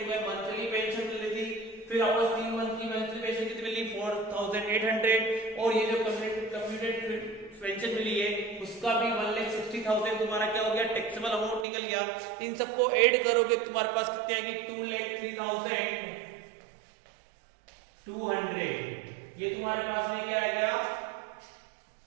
मंथली पेंशन मिल रही थी, फिर वापस 3 मंथ की मंथली पेंशन कितनी मिली 4,800, और ये जो कम्प्यूटेड पेंशन मिली है उसका भी 1,60,000 तुम्हारा क्या हो गया, टैक्सेबल अमाउंट निकल गया। इन सबको ऐड करोगे तुम्हारे पास कितने आएंगे 2,03,200। ये तुम्हारे पास में क्या आ गया,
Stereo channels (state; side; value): drops out; left; at 11.7 s